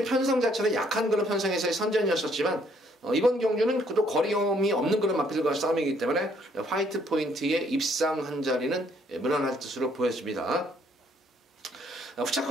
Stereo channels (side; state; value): both; normal; correlation 0.66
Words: 편성 자체는 약한 그런 편성에서의 선전이었었지만 이번 경주는 또 거리 경험이 없는 그런 마필과 싸움이기 때문에 화이트 포인트에 입상한 자리는 무난할 뜻으로 보여집니다.